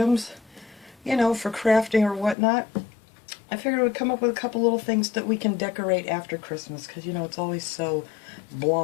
you know, for crafting or whatnot, I figured I would come up with a couple little things that we can decorate after Christmas, because you know it's always so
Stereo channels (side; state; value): right; drops out; at 2.4 s